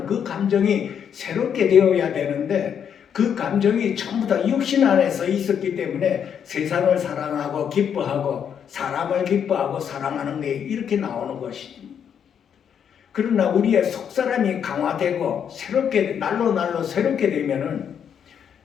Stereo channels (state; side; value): quieter; right; 8.1 dB